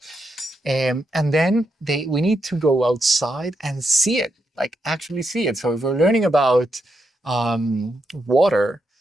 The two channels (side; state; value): both; normal; correlation 0.82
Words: And then we need to go outside and see it, like actually see it. So if we're learning about water,